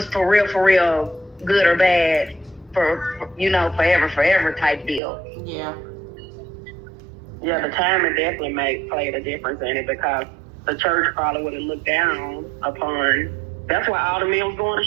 for real, good or bad, for forever type deal. Yeah. Yeah, the timing definitely played a difference in it because the church probably would have looked down upon. That's why all the men was going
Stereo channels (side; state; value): left; drops out; at 5.0 s